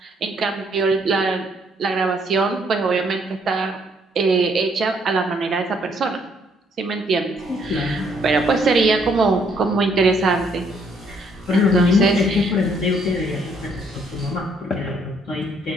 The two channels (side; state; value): both; normal; correlation 0.68